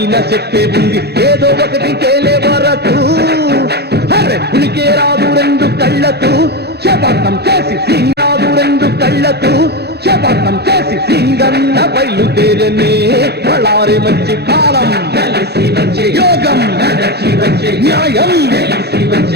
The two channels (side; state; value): left; late; 0.48 ms